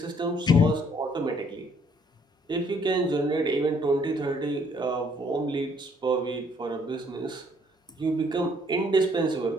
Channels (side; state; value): both; normal; correlation 0.65